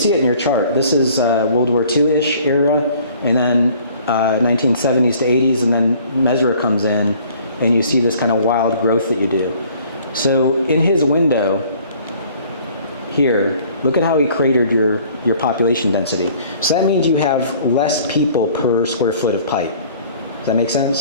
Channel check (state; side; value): inverted; both; correlation -0.54